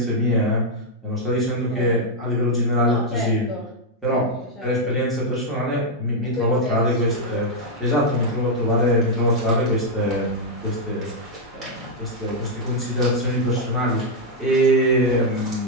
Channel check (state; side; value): normal; both; correlation -0.02